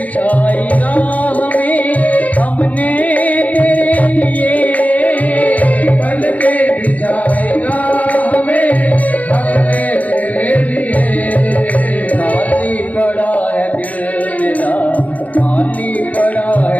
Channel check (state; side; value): late; right; 0.072 ms